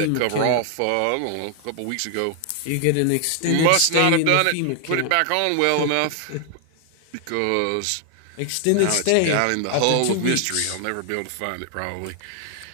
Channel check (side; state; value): both; different; correlation 0.00